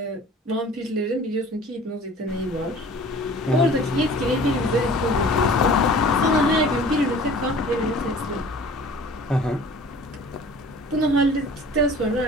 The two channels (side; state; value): both; normal; correlation 0.46